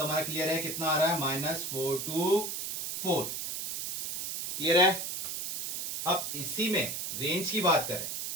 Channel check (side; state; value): right; noise; hiss, 4 dB below the sound